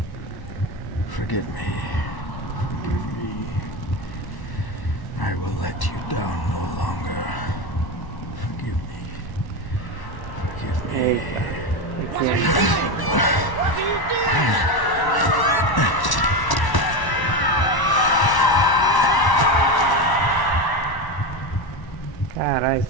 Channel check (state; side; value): late; right; 1.1 ms